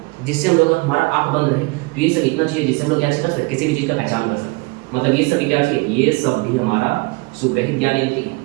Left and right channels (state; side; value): quieter; left; 26.4 dB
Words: जिससे हम लोग, हमारा आँख बंद रहे तो ये सब इतना चाहिए जिससे हम लोग क्या कर सकते हैं? किसी भी चीज़ का पहचान कर सकते हैं। मतलब ये सब भी क्या चाहिए? ये सब भी हमारा सुग्राही ज्ञानेंद्रिय है।